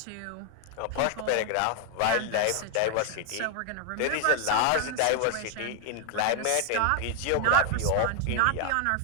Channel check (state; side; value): different; both; correlation 0.00